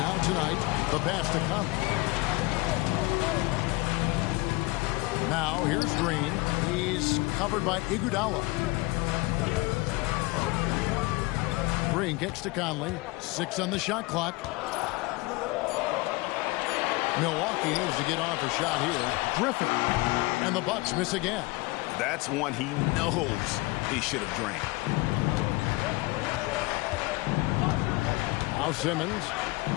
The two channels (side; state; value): right; quieter; 23.4 dB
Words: tonight. The pass to come. Now, here's Green. He's covered by Iguodala. Green kicks to Conley. 6 on the shot clock. Milwaukee needs to get off a shot here. Griffin. And the Bucks miss again. That's one he knows he should have drained. Now Simmons.